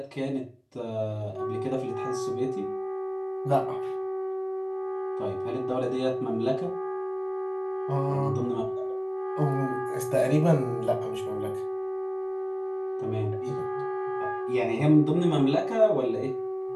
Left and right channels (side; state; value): both; identical; correlation 1.00